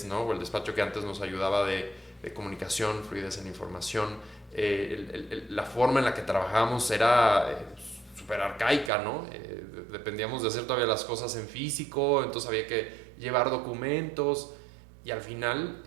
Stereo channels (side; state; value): left; drops out; at 8.9 s